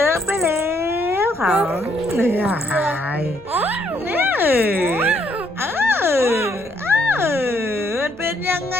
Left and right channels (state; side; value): normal; both; correlation 0.70